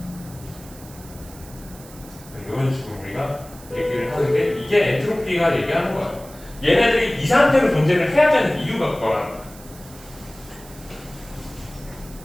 이런 식으로 우리가 얘기를 하는 게 이게 엔트로피가 얘기하는 거야. 얘네들이 이 상태로 존재를 해야 되는 이유가 그거라는 거야.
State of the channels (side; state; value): right; noise; hiss, 20 dB below the sound